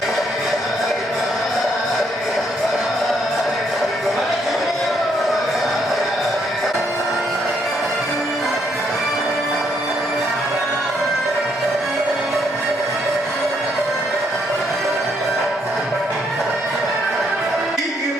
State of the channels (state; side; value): normal; both; correlation 0.72